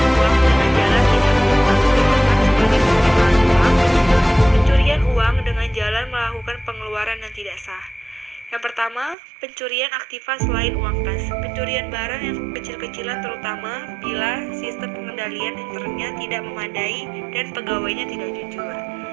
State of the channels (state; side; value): drops out; left; at 9.2 s